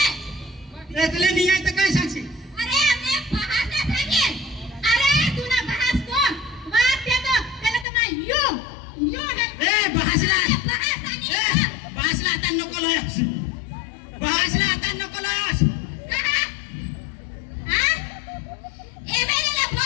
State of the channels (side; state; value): right; drops out; at 7.9 s